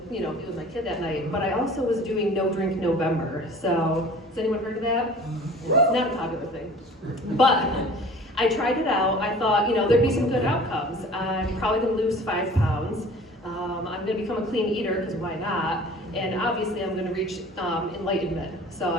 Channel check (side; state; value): both; normal; correlation 0.45